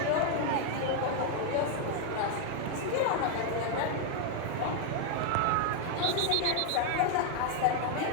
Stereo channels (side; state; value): both; different; correlation 0.00